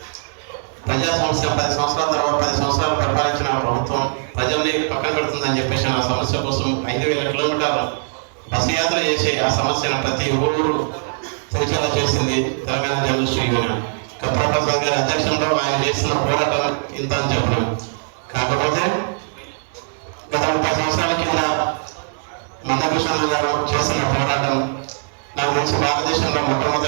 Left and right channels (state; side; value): silent; left; digital silence